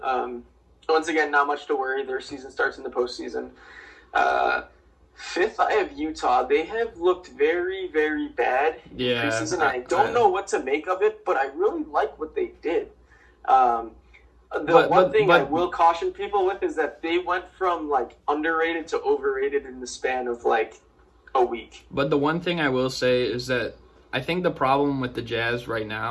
Once again, not much to worry. Their season starts in the postseason. 5th, I have Utah. They have looked very, very bad in preseason. I don't know what to make of it, but I really like what they did. One thing I will caution people with is that they went from underrated to overrated in the span of a week. But the one thing I will say is that I think the problem with the Jazz right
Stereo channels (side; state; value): both; identical; correlation 1.00